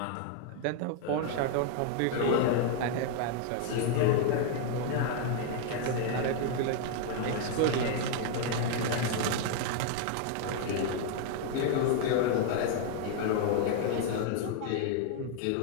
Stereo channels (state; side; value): different; both; correlation 0.00